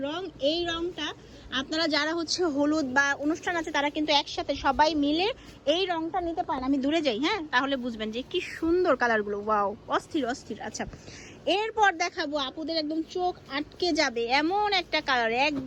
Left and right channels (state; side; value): identical; both; correlation 1.00